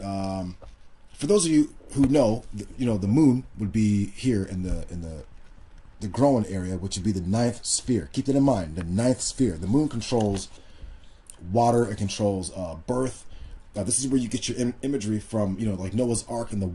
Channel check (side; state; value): both; identical; correlation 1.00